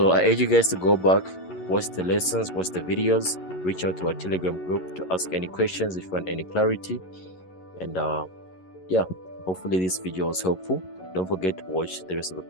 I urge you guys to go back, watch the lessons, watch the videos, reach out to our Telegram group to ask any questions if you want any clarity. And yeah, hopefully this video was helpful. Don't forget to watch the rest of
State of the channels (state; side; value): late; right; 11 ms